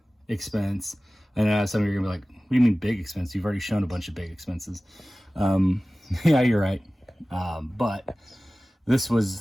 expense. And some of you are gonna be like, what do you mean big expense? You've already shown a bunch of big expenses. Yeah, you're right. But this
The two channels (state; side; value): normal; both; correlation 0.97